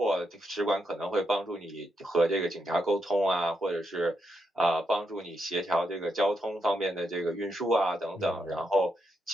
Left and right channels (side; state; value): both; normal; correlation 0.82